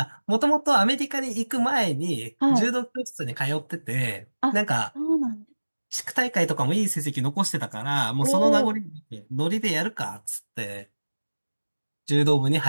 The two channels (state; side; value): inverted; both; correlation -1.00